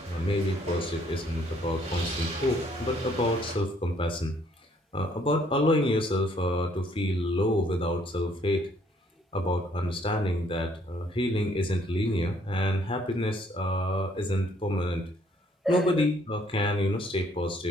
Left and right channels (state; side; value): normal; both; correlation 0.65